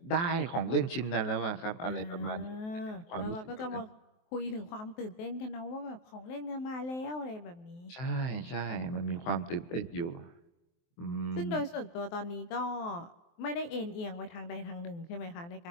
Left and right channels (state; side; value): late; right; 23 ms